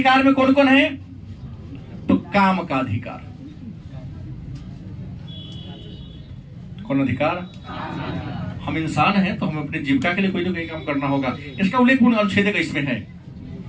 में कौन कौन है? तो काम का अधिकार। कौन अधिकार? हम इंसान हैं तो हमें अपनी जीविका के लिए कोई ना कोई काम करना होगा, इसका उल्लेख अनुच्छेद का इसमें है।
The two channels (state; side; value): identical; both; correlation 1.00